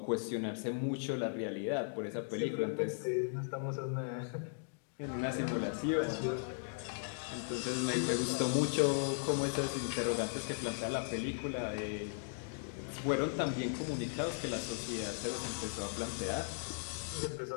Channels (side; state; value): right; silent; digital silence